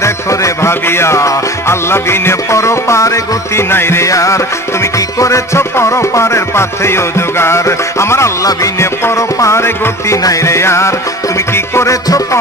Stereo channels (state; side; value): normal; both; correlation 0.39